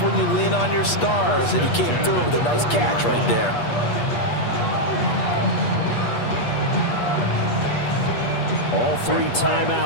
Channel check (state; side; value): late; right; 8.4 ms